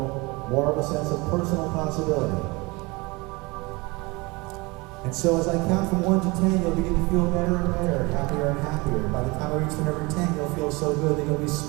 more of a sense of personal possibility. And so as I count from 1 to 10, you'll begin to feel better and better, happier and happier. By the time I reach the number 10, you'll feel so good that you'll be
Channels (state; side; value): quieter; left; 25.2 dB